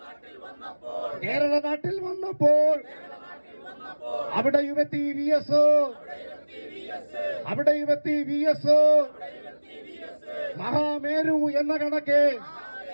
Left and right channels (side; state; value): both; inverted; correlation -1.00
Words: കേരള നാട്ടിൽ വന്നപ്പോൾ അവിടെയുമെത്തി VS, അവിടെയുമെത്തി VS. മഹാമേരു എന്ന കണക്കെ,